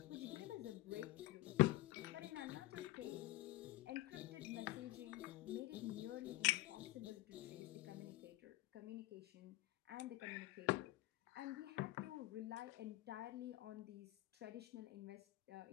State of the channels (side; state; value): right; quieter; 18.3 dB